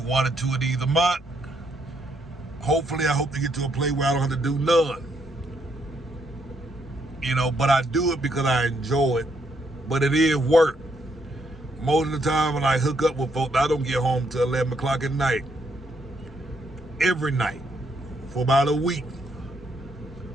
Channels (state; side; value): normal; both; correlation 0.74